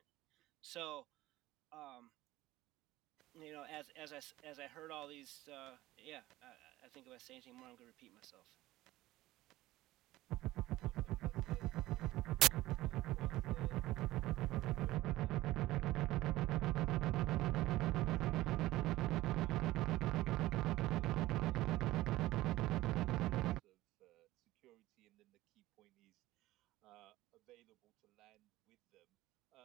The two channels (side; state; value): left; quieter; 16.8 dB